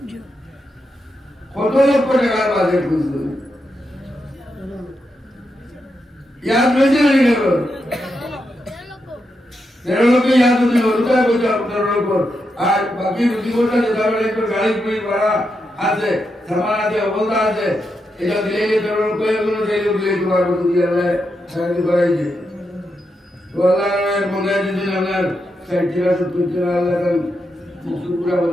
কত লক্ষ টাকার বাজেট বুঝলো याद वैसे नहीं करो 13 लोग याद नहीं होता है कुछ 13 लोग आज बाकी रुचि कोटा देता है तो गाड़ी कोई बड़ा आते सामान आते बोलता आते এটা দিলে 13 লোग कोई কোনো দিলে দিলে তোমার বন্ধু দিয়ে আল্লাহ সাহায্য করাই যে তো আল্লাহর মনে দিন আপনার সাইটিরা সুতিরা আল্লাহ কান মুসুরা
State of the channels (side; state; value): both; normal; correlation 0.85